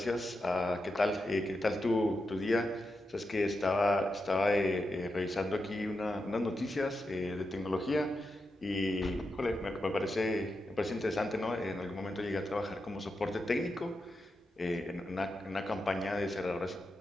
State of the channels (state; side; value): normal; both; correlation 0.87